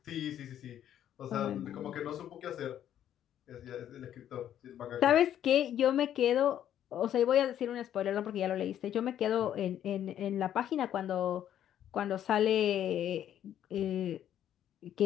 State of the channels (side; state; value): right; quieter; 10.7 dB